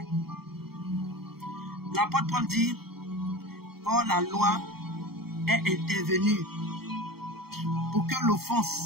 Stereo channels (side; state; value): left; late; 0.95 ms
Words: L'apôtre Paul dit: or la loi est intervenue pour que